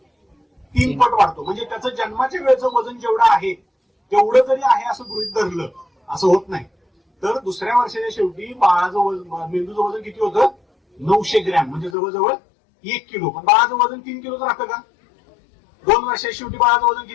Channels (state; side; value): drops out; right; at 12.0 s